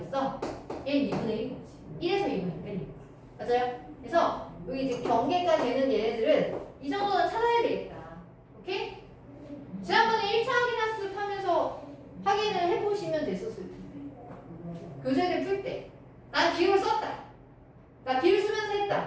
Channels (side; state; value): both; identical; correlation 1.00